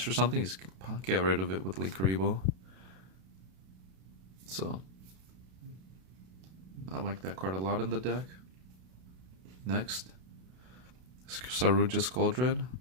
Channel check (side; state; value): left; late; 32 ms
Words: or something, you just get rid of it with Linkaribo. So I like that card a lot in the deck. Next, Saruja Skuldred.